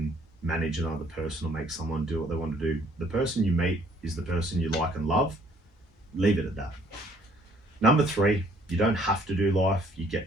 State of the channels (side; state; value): both; normal; correlation 0.61